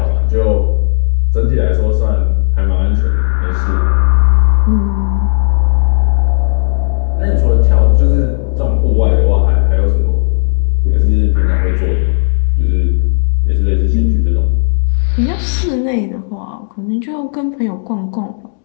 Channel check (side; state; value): right; silent; digital silence